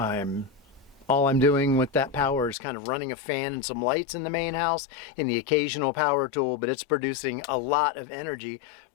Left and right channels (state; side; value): drops out; right; at 2.6 s